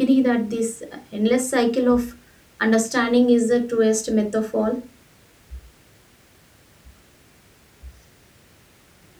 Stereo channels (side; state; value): both; identical; correlation 1.00